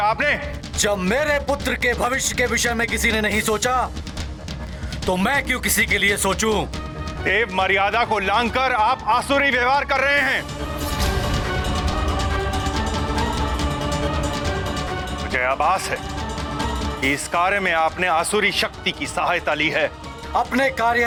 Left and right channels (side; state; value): both; identical; correlation 1.00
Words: आपने? जब मेरे पुत्र के भविष्य के विषय में किसी ने नहीं सोचा, तो मैं क्यों किसी के लिए सोचूं? देव मर्यादा को लांघकर आप आसुरी व्यवहार कर रहे हैं। मुझे आभास है कि इस कार्य में आपने आसुरी शक्ति की सहायता ली है। अपने